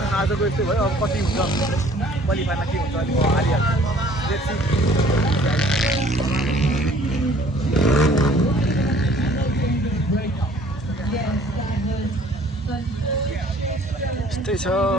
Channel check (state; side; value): normal; both; correlation 0.55